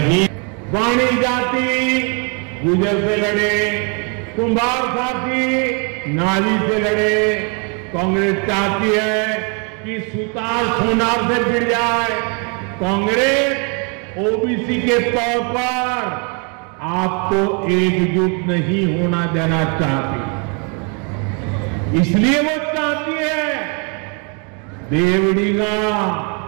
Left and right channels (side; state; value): left; quieter; 36.1 dB